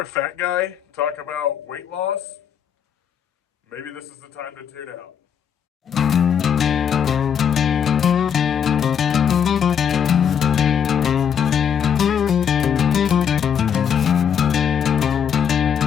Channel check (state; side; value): quieter; right; 8.0 dB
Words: fat guy talk about weight loss, maybe this is the time to tune out.